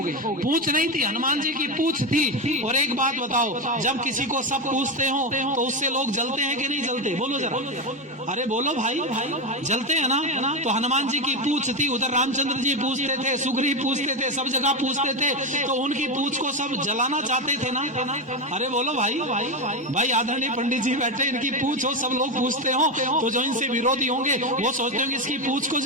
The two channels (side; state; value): both; normal; correlation 0.13